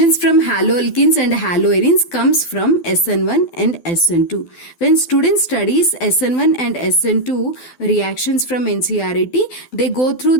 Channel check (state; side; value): late; right; 12 ms